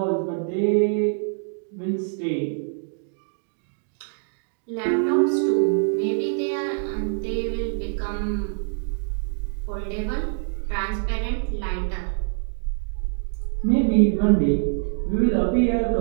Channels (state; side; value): silent; left; digital silence